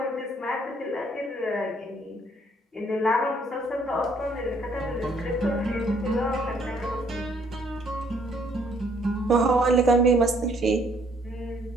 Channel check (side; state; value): both; normal; correlation 0.65